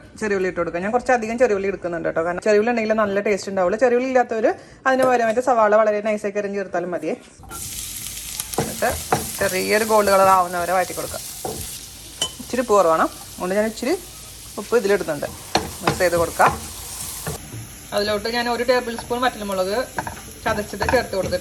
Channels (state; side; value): identical; both; correlation 1.00